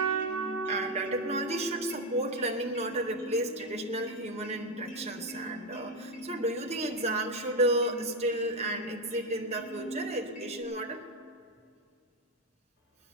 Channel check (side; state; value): both; normal; correlation 0.08